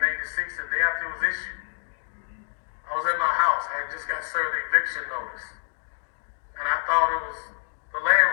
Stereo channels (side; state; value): right; silent; digital silence